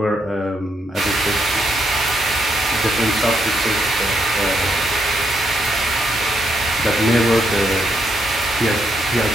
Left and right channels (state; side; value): normal; both; correlation 0.78